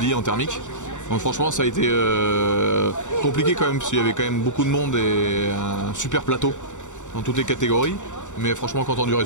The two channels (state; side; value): late; right; 0.85 ms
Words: en thermique. Donc franchement ça a été compliqué quand même parce qu'il y avait quand même beaucoup de monde et un super plateau dans toutes les catégories, mais franchement content du